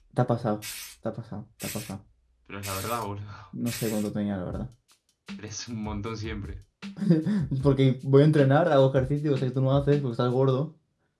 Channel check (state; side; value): identical; both; correlation 1.00